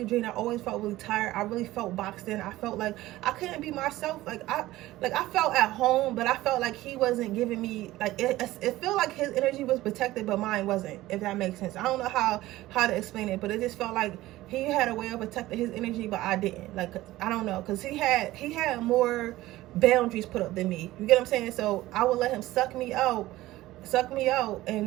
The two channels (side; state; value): left; quieter; 16.8 dB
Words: drained. I always felt really tired. I really felt boxed in. I felt like I couldn't be myself. Like I felt at home, but I felt like he wasn't giving me, like it felt like his energy was protected but mine wasn't, if that makes sense. I don't know how to explain it, but it just felt like he had a way of protecting his energy but I didn't. Like I don't know, because he had more boundaries put up than me. You get what I'm saying? So I would let him suck me out,